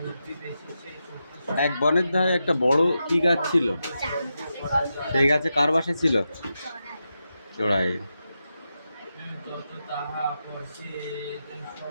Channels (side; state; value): both; inverted; correlation -0.88